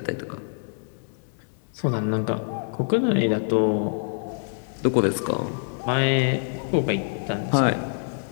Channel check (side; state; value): right; silent; 61 dB below the other